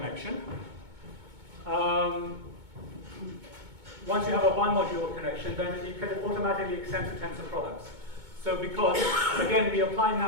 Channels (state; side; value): late; left; 2.2 ms